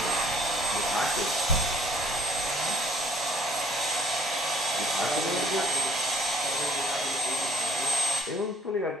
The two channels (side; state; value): both; normal; correlation 0.61